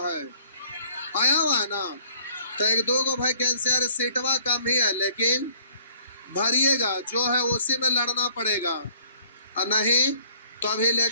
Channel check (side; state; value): both; inverted; correlation -0.56